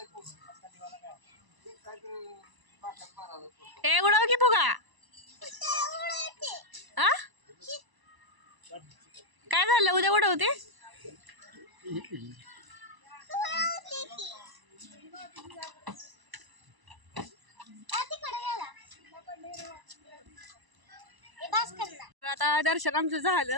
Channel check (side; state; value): left; late; 1.0 ms